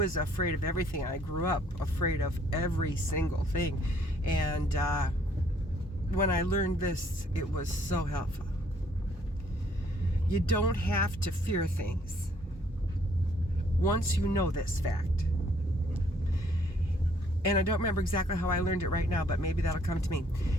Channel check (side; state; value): both; normal; correlation 0.64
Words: afraid of everything. I grew up afraid of every single thing, and when I learned this, it was so helpful. You don't have to fear things once you know this fact. And I don't remember exactly how I learned it right now, but maybe that'll come to me.